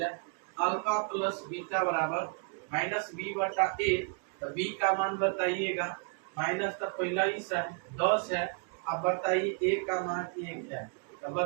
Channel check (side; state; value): left; quieter; 39.6 dB